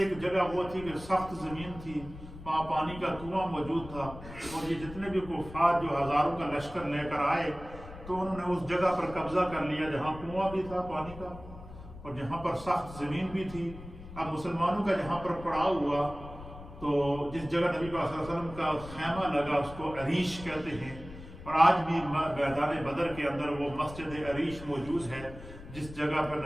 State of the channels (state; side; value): noise; left; rumble, 14 dB below the sound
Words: جگہ وہ تھی کہ سخت زمین تھی, وہاں پانی کا کنواں موجود تھا. اور یہ جتنے بھی کفار جو ہزاروں کا لشکر لے کر آئے تو انہوں نے اس جگہ پر قبضہ کر لیا جہاں کنواں بھی تھا پانی کا اور جہاں پر سخت زمین بھی تھی. اب مسلمانوں کا جہاں پر پڑاؤ ہوا تو جس جگہ نبی صلی اللہ علیہ وسلم کا خیمہ لگا اس کو عریش کہتے ہیں, اور آج بھی میدان بدر کے اندر وہ مسجد عریش موجود ہے جس جگہ پر